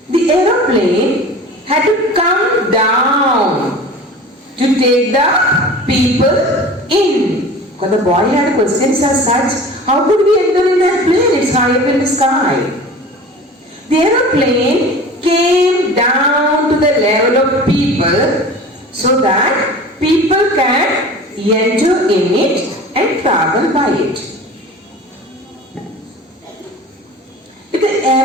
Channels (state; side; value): normal; both; correlation 0.39